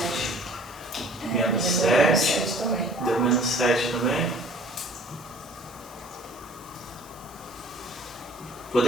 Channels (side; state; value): both; normal; correlation 0.52